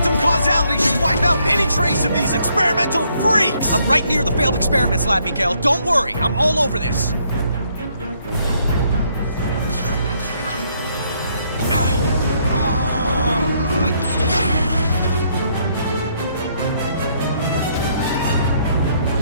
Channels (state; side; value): inverted; both; correlation -0.70